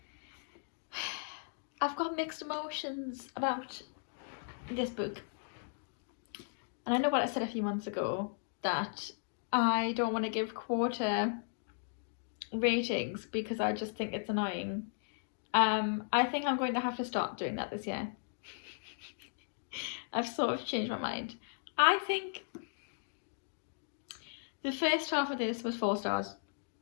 I've got mixed emotions about this book. And I know what I said a few months ago, that I don't want to give quarter ratings because I just think it's annoying. I think I'm going to have to start doing that this year. I've sort of changed my mind. I think the first half of this was 4 stars.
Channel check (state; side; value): silent; right; digital silence